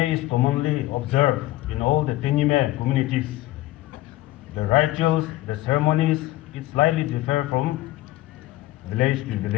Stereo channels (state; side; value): quieter; right; 16.6 dB